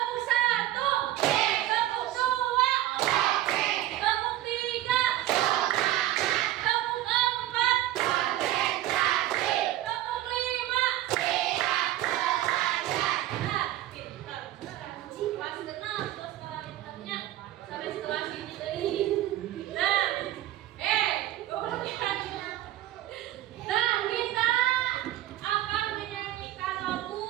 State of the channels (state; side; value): quieter; left; 14.2 dB